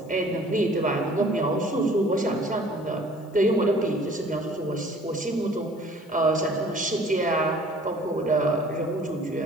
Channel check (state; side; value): noise; left; hiss, 30 dB below the sound